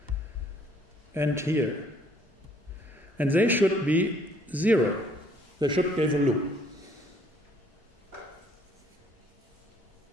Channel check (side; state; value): both; normal; correlation 0.62